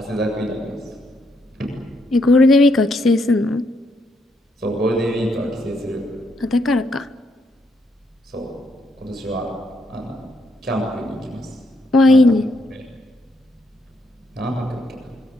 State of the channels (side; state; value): both; normal; correlation 0.75